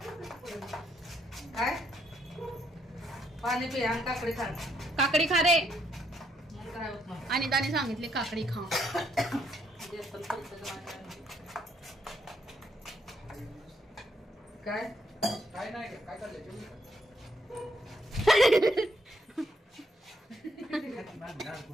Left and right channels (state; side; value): normal; both; correlation 0.73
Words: काय पाणी पी आणि काकडी खा काकडी खा रे. मग काय होत नाही. आणि त्याने सांगितले काकडी खा. काय काय नाही काय चाललंय जेवली का?